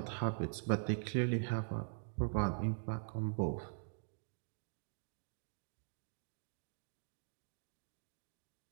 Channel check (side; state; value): left; silent; digital silence